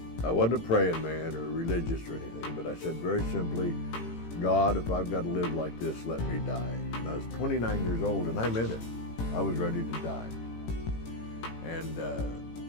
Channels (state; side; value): late; right; 18 ms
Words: I wasn't a praying man or religious or anything, but I said very simply, God, if I've got to live like this, let me die. And I was 29 years old, and I meant it. I was ready to die. And,